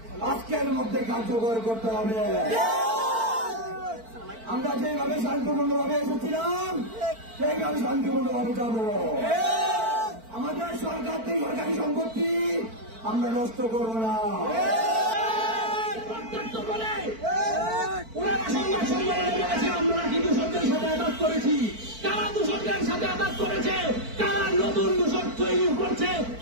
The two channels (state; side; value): late; left; 4.5 ms